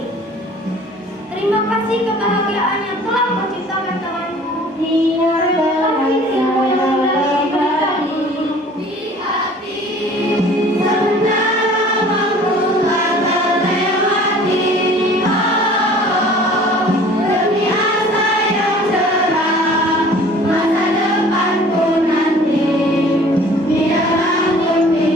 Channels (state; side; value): normal; both; correlation 0.49